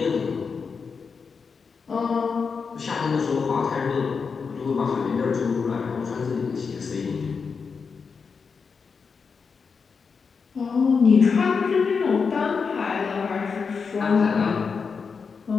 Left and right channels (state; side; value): quieter; right; 5.4 dB